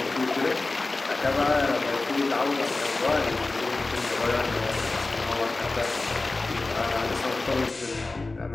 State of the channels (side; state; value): right; quieter; 3.3 dB